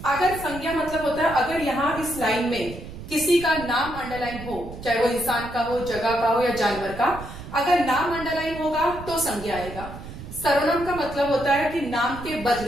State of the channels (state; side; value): noise; right; rumble, 12 dB below the sound